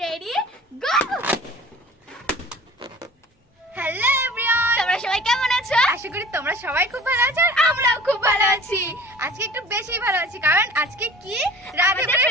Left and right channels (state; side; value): normal; both; correlation 0.45